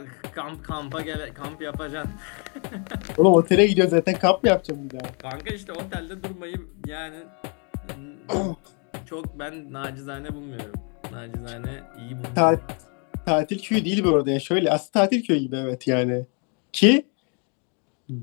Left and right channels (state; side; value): quieter; right; 37.1 dB